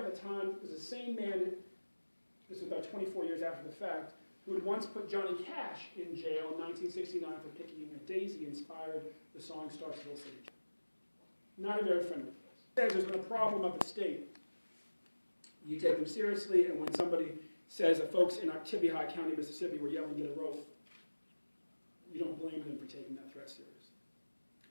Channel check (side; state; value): both; inverted; correlation -1.00